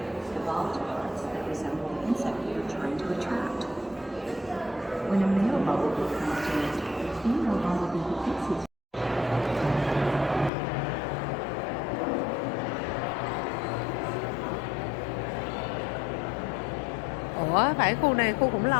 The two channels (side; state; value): right; drops out; at 10.5 s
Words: Evolved parts that resemble insect you're trying to attract. When a male bumblebee comes to nest, the female bumblebee hits his Ủa, phải khu này khu khủng